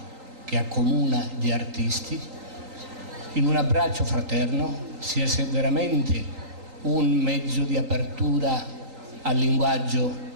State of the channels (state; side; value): late; left; 3.8 ms